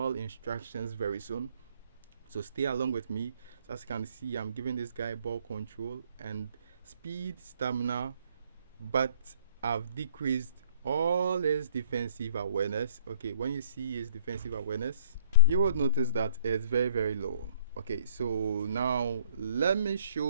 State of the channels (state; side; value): inverted; both; correlation -0.61